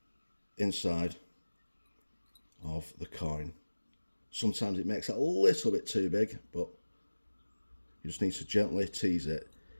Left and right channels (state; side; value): inverted; both; correlation -1.00